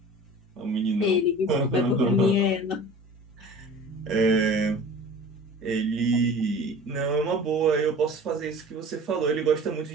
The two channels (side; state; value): both; normal; correlation 0.41